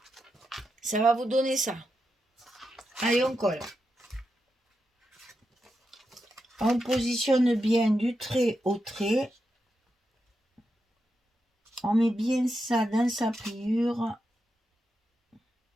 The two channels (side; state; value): both; normal; correlation 0.87